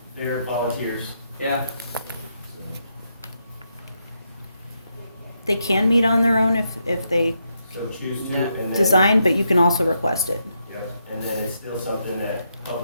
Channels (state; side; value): inverted; both; correlation -0.81